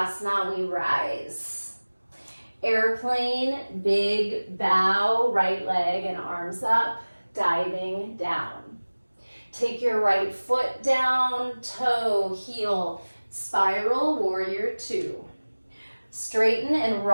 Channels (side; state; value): both; inverted; correlation -1.00